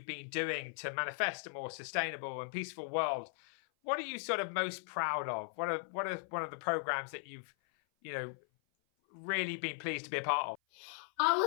been doing to manifest a more sustainable and peaceful world? What are you sort of most proud of? What are one of the programs that you've, really been pleased to be a part of? I'll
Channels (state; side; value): silent; right; 53 dB below the other